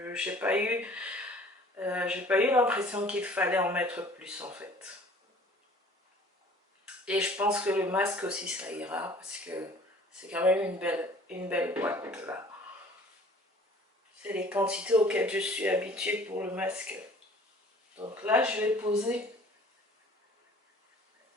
J'ai pas eu l'impression qu'il fallait en mettre plus en fait. Et je pense que le masque aussi ça ira parce que c'est quand même une belle boîte là. C'est les quantités auxquelles je suis habituée pour le masque. Donc là je vais poser.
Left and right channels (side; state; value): both; normal; correlation 0.50